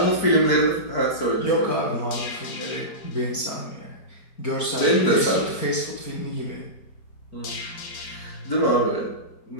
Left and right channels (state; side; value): late; right; 4.6 ms